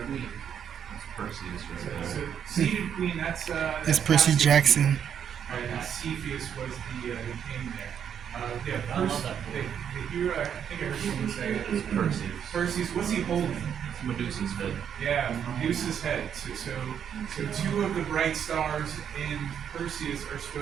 queen. That's Perseus right So there. seated queen. That's That's Percy Jackson. And Cepheus was the king there. Yeah, I love that the hero. I think I heard someone say it. It's Perseus. Perseus. What's he holding? It's Medusa's head. Yeah, Medusa's head. So two of the bright stars in Perseus are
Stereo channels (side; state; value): left; quieter; 8.4 dB